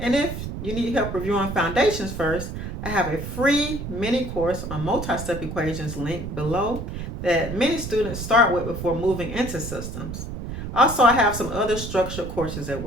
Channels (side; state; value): right; noise; rumble, 7 dB below the sound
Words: if you need help reviewing foundations first, I have a free mini course on multi-step equations linked below that many students start with before moving into systems. Also, I have some other structured courses